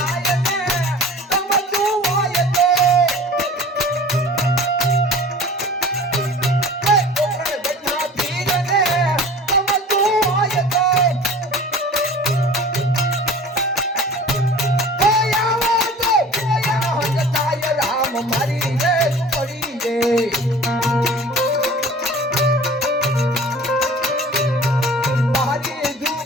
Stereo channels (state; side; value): normal; both; correlation 0.42